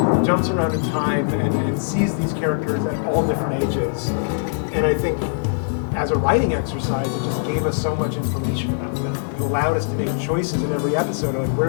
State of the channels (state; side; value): silent; right; 64 dB below the other